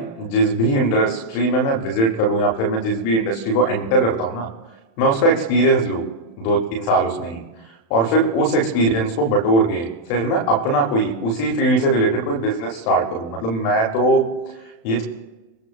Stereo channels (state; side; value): late; right; 35 ms